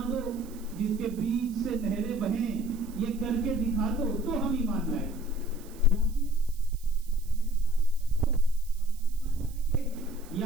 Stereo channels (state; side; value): noise; right; hiss, 22 dB below the sound